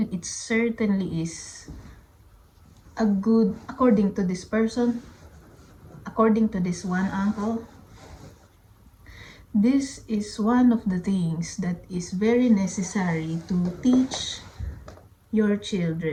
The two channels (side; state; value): both; identical; correlation 1.00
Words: certainly is a good, according to this person, according to this one uncle, this is one of the things that is very necessary to teach your